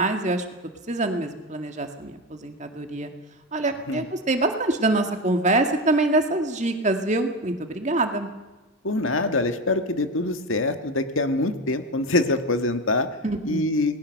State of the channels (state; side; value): normal; both; correlation 0.19